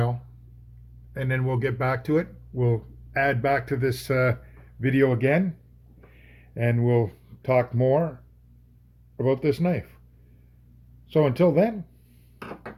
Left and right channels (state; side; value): identical; both; correlation 1.00